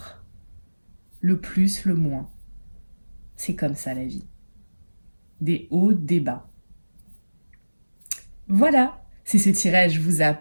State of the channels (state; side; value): inverted; both; correlation -1.00